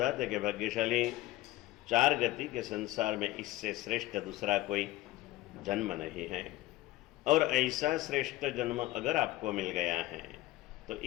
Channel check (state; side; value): quieter; right; 17.4 dB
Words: कि भाग्यशाली चार गति के संसार में इससे श्रेष्ठ दूसरा कोई जन्म नहीं है। और ऐसा श्रेष्ठ जन्म अगर आपको मिल गया है तो